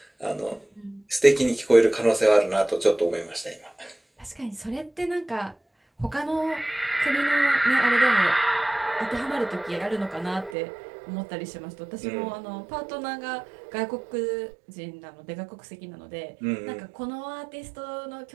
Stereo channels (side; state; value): left; drops out; at 10.6 s